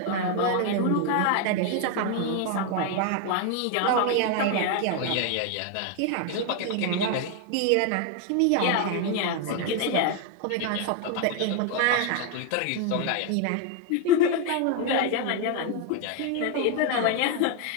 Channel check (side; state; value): both; different; correlation 0.01